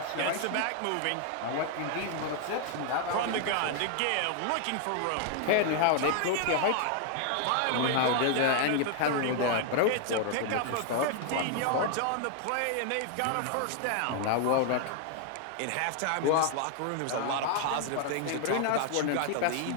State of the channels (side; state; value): both; different; correlation 0.00